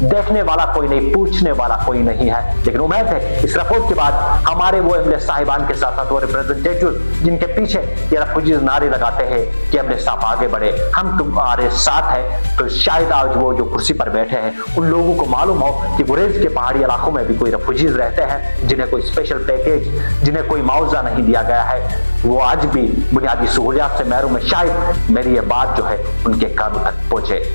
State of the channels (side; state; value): both; inverted; correlation -1.00